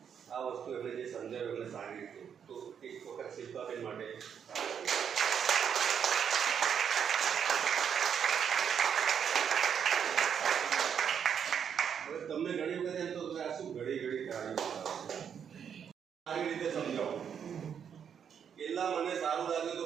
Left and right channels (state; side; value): quieter; left; 7.8 dB